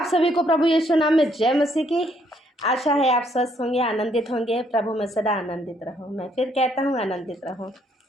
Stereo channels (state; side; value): normal; both; correlation 0.69